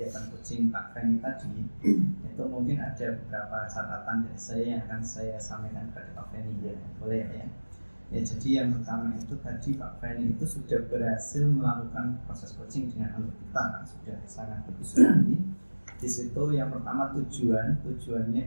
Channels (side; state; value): both; inverted; correlation -1.00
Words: coaching Pak Feni tadi, itu mungkin ada beberapa catatan dari saya yang akan saya sampaikan kepada Pak Feni ya, boleh ya? Ya, jadi yang pertama itu tadi Pak Feni itu sudah berhasil melakukan proses coaching dengan alur kita, kan sudah sangat bagus sekali. Di situ yang pertama